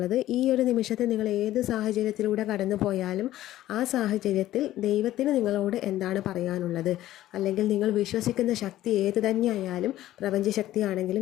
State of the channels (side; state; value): right; quieter; 14.2 dB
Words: ഈ ഒരു നിമിഷത്തിൽ നിങ്ങൾ ഏത് സാഹചര്യത്തിലൂടെ കടന്നു പോയാലും ആ സാഹചര്യത്തിൽ ദൈവത്തിന് നിങ്ങളോട് എന്താണ് പറയാനുള്ളത്, അല്ലെങ്കിൽ നിങ്ങൾ വിശ്വസിക്കുന്ന ശക്തി ഏത് തന്നെയായാലും,